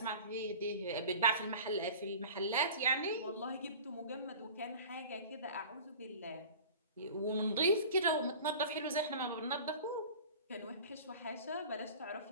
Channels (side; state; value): both; inverted; correlation -0.39